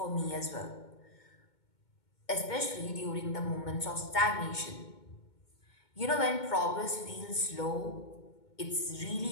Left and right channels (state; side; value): late; right; 2.2 ms